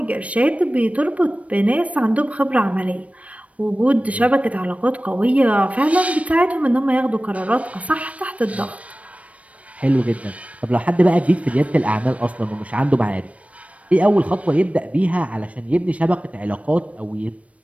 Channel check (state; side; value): late; left; 0.065 ms